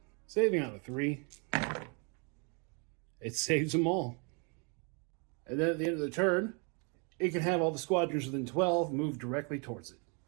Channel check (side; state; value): left; quieter; 35.5 dB